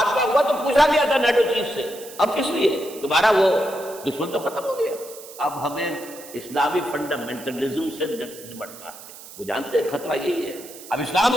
ہوا تو پوچھا گیا تھا نیٹو چیف سے اب کس لیے؟ تمہارا وہ دشمن تو ختم ہو گیا. اب ہمیں اسلامی فنڈامنٹلزم سے نمٹنا ہے. وہ جانتے ہیں خطرہ یہی ہے. اب اسلام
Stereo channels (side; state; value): right; noise; hiss, 16 dB below the sound